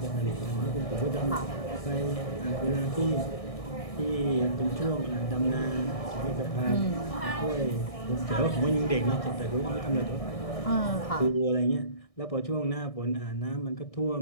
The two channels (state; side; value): late; right; 1.6 ms